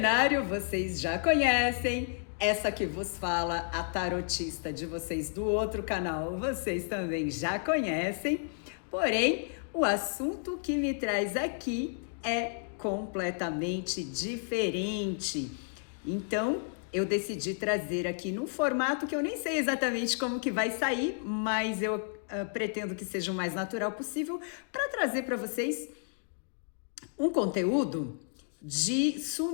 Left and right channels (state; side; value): silent; right; digital silence